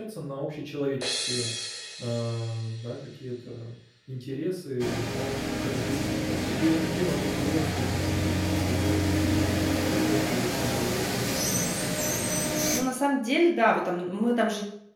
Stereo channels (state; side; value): identical; both; correlation 1.00